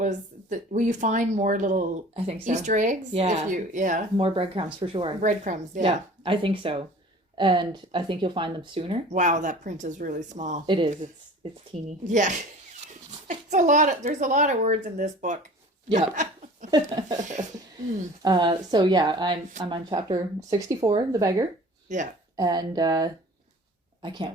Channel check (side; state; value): both; normal; correlation 0.44